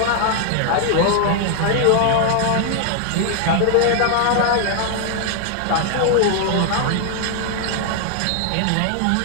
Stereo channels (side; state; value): both; different; correlation 0.00